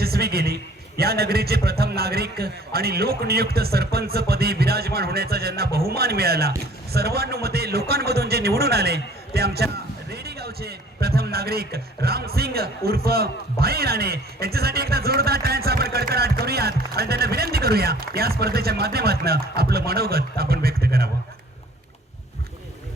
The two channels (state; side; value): normal; both; correlation 0.53